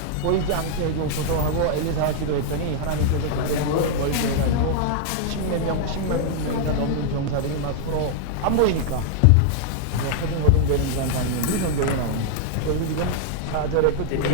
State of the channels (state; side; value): different; both; correlation -0.01